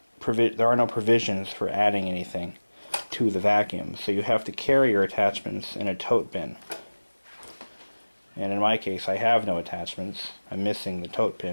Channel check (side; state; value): both; inverted; correlation -1.00